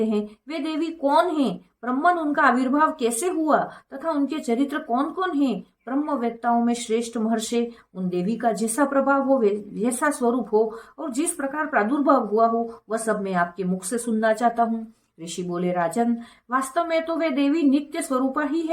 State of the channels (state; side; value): identical; both; correlation 1.00